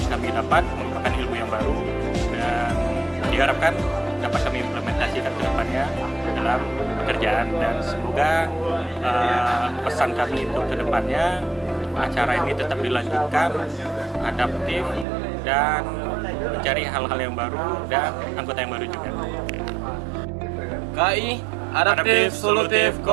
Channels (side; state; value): left; drops out; at 15.1 s